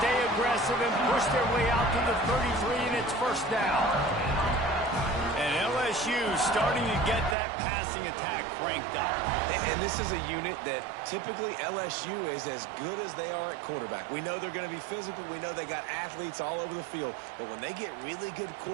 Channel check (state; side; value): drops out; left; at 7.4 s